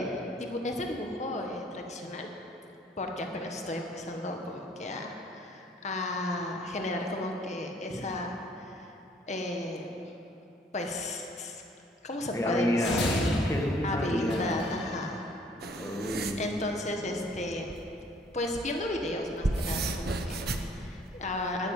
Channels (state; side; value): normal; both; correlation 0.59